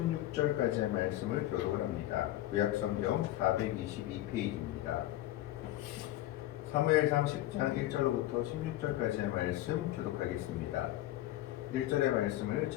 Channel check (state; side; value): quieter; right; 14.9 dB